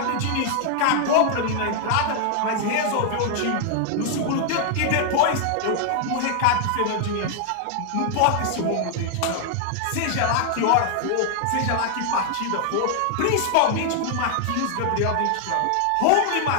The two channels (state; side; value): different; both; correlation 0.00